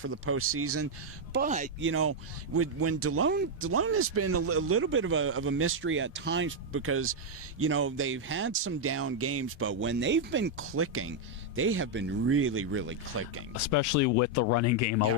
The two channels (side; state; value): both; normal; correlation -0.01